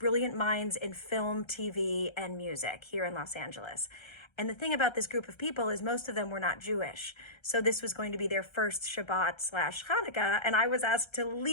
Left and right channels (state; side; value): late; right; 1.3 ms